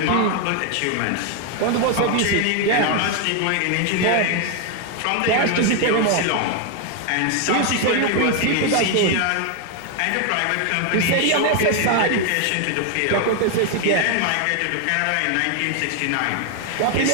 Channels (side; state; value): both; different; correlation 0.00